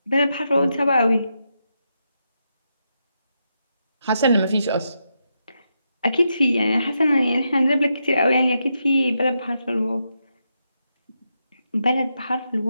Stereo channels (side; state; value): both; inverted; correlation -0.84